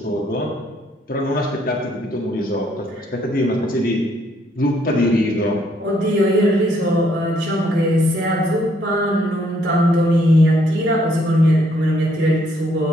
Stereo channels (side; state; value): both; normal; correlation 0.68